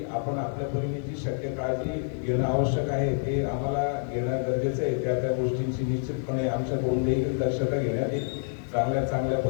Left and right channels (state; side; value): silent; right; digital silence